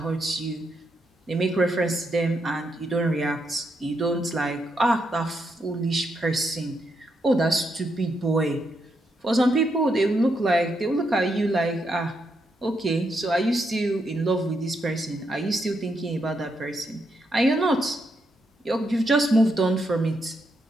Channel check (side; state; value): both; normal; correlation 0.80